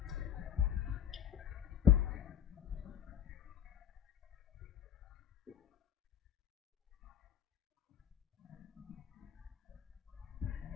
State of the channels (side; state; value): right; quieter; 9.7 dB